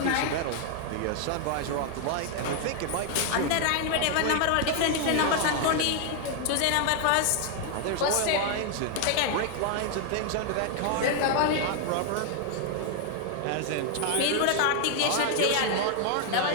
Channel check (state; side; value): different; both; correlation 0.00